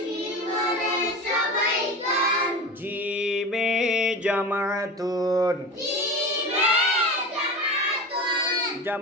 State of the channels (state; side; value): normal; both; correlation 0.30